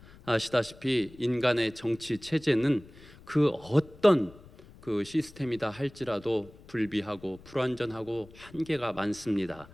아시다시피 인간의 정치 체제는 그 어떤 그 시스템이다 할지라도 불비하고 불완전하고 한계가 많습니다.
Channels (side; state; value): left; noise; rumble, 22 dB below the sound